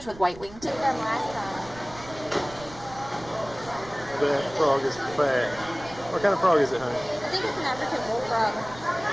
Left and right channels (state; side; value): noise; right; rumble, 18 dB below the sound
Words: with white wingtips. That frog is fat. What kind of frog is it, honey? I think it's an African bullfrog.